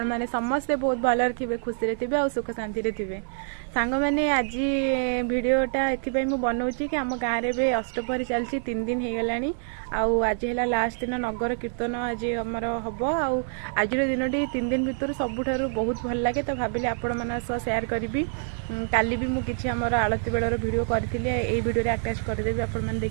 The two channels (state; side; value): silent; left; 61 dB below the other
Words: माने समस्ते बहुत भलर थिबे खुशी रे थिबे और सुख शांति रे थिबे। सांग माने आज वीडियोटा एथिपाई मु बनाउछि कि हम गाँव रे अष्टपहरी चलछि 3 दिन हे गलानी आउ आज है लास्ट दिन नगर कीर्तन आज हमर हबो आउ आज दिनटी 3 दिन भितर सबुठारु बहुत भल लागे तो भाबिले आपण माना सह शेयर करबी। काली भी मु किछि हमर आलती बेलर वीडियो करथिले एई वीडियो रे अटैच कर देबी आपण माने